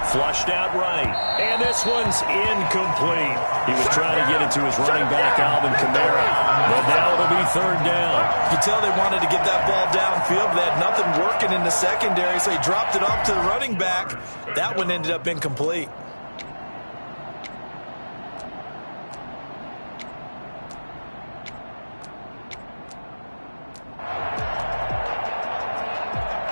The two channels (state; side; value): inverted; both; correlation -1.00